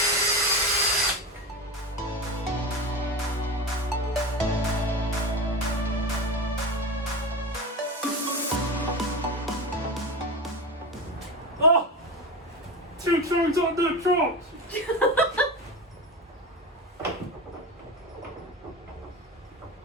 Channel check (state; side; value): normal; both; correlation 0.24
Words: Oh! 2 turns on the trot!